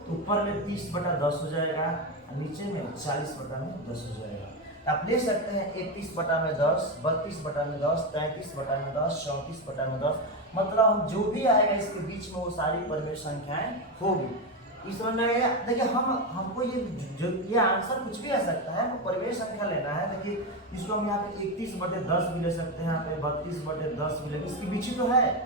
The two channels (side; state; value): both; normal; correlation 0.13